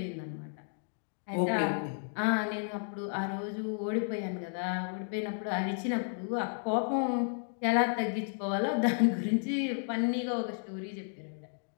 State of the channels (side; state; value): right; silent; digital silence